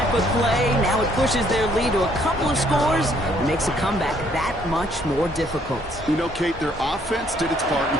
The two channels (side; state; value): both; normal; correlation 0.66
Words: of play. Now it pushes their lead to a couple of scores and makes a comeback that much more difficult. You know, Kate, their offense did its part and